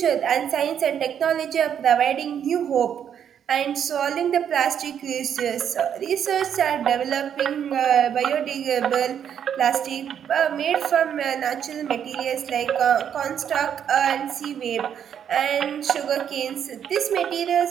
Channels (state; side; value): quieter; left; 8.7 dB